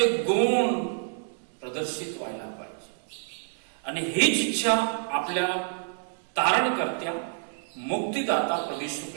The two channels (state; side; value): silent; left; 59 dB below the other